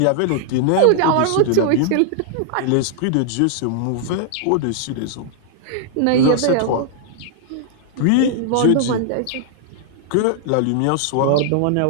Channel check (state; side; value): different; both; correlation -0.01